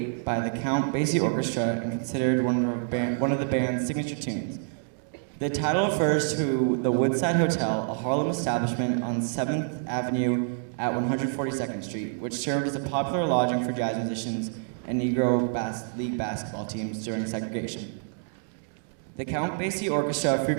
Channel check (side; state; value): left; silent; digital silence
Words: by the Count Basie Orchestra and considered one of the band's signature tunes. The title refers to the Woodside Hotel, a Harlem establishment on 7th Avenue at 142nd Street, which served as a popular lodging for jazz musicians and Negro League basketball teams during segregation. The Count Basie Orchestra